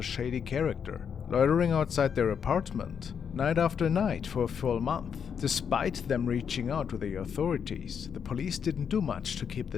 shady character loitering outside their apartment night after night for a full month. Despite them reaching out to the authorities, the police didn't do much to keep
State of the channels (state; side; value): quieter; right; 7.3 dB